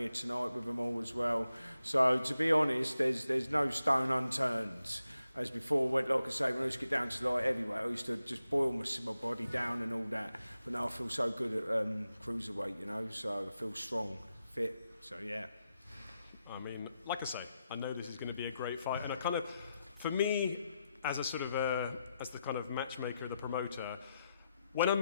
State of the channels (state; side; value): inverted; both; correlation -0.87